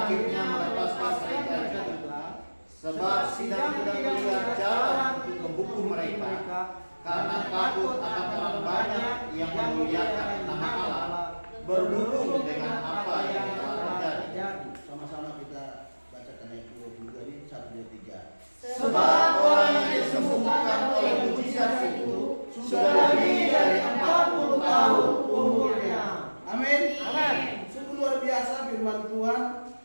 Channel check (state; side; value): inverted; both; correlation -1.00